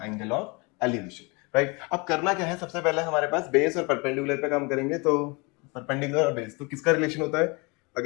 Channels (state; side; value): quieter; right; 28.6 dB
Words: एंगल ऑफ एलिवेशन, राइट। अब करना क्या है, सबसे पहले हमारे पास बेस और परपेंडिकुलर पे काम करेंगे। तो परपेंडिकुलर और बेस, तो किसका रिलेशन होता है,